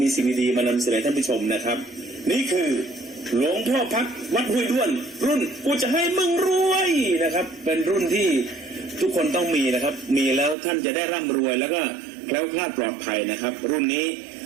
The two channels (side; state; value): left; drops out; at 10.6 s